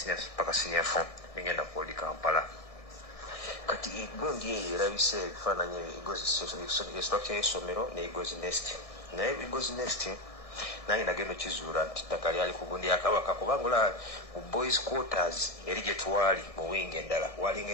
paka senior 4 ngenda ku Kampala kati egundi eyo erabise ebifaananyi structure y'essomero ne Eagles Nest naye Eagles Nest nange nagenda okizuula nti ttaka lyali ku gundi ya Kabaka kubanga olaba mu boys quarters eri gye twali mu wingi endala walinga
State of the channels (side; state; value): right; late; 1.6 ms